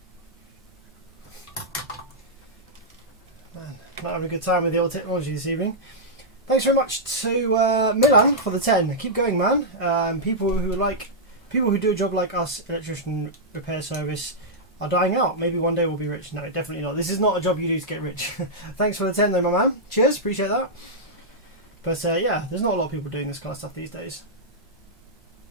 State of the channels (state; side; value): normal; both; correlation -0.09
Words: Not having a good time with the old technology this evening. Thanks very much to Milan for the 10. Keep going, man. People who do a job like us, electrician repair service, are dying out. Maybe one day we'll be rich. No, definitely not. This is not a job you do to get rich. Thanks for the 10 though, my man. Cheers, appreciate that. But yeah, there's not a lot of people doing this kind of stuff these days.